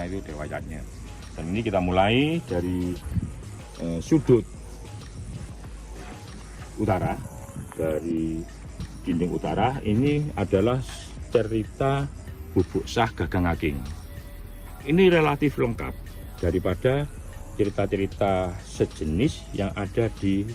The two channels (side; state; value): both; identical; correlation 1.00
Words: itu dewa yajna. Dan ini kita mulai dari sudut utara, dari dinding utara. Ini adalah cerita Bubuk Sah Gagang Aking. Ini relatif lengkap daripada cerita-cerita sejenis yang ada di